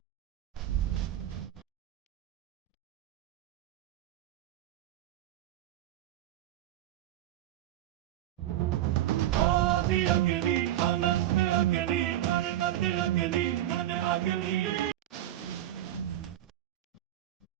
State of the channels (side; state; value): left; quieter; 13.2 dB